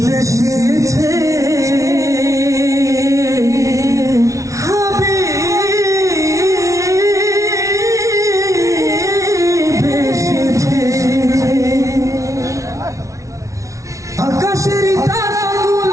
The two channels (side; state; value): left; late; 0.15 ms